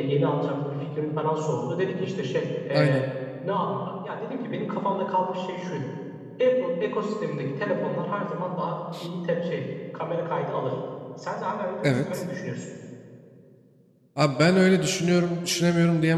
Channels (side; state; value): both; identical; correlation 1.00